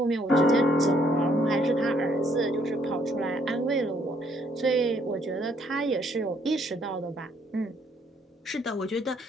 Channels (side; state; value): both; normal; correlation 0.68